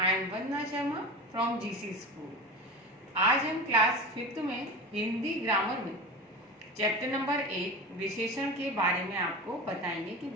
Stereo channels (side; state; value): both; normal; correlation 0.29